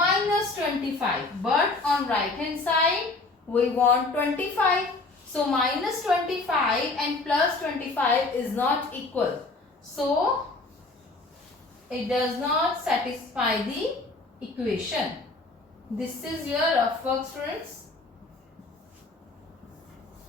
25. But on right hand side we want 25. So minus 25 and plus 25 is not equal. So it does not satisfy the equation. This is your rough work, students.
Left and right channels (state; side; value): quieter; right; 3.4 dB